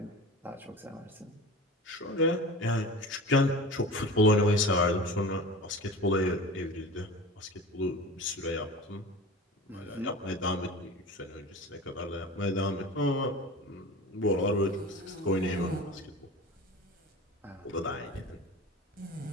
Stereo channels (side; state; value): both; normal; correlation 0.35